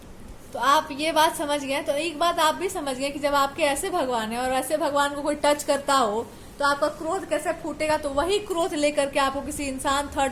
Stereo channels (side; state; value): both; identical; correlation 1.00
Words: तो आप ये बात समझ गए। तो एक बात आप भी समझ गए कि जब आपके ऐसे भगवान है और ऐसे भगवान को कोई टच करता हो तो आपका क्रोध कैसे फूटेगा। तो वही क्रोध लेकर के आपको किसी इंसान,